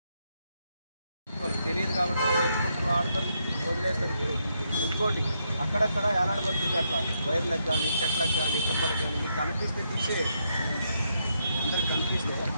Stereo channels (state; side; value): inverted; both; correlation -0.78